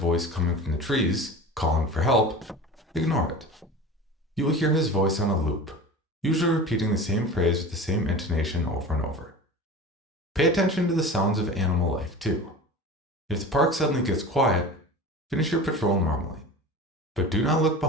coming from the trees, calling for help, ignore it. You will hear his voice on a loop, usually repeating the same phrase with the same intonation over and over. Pay attention to the sounds of animal life too. If the park suddenly gets quiet, finish your patrol normally, but do not look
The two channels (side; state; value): both; normal; correlation 0.34